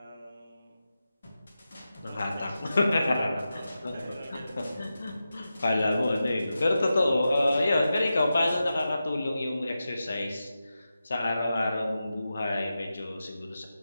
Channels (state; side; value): inverted; both; correlation -0.91